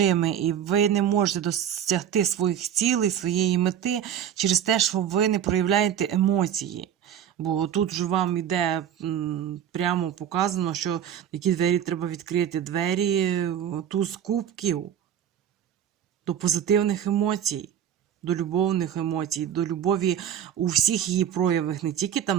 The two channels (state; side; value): quieter; left; 9.6 dB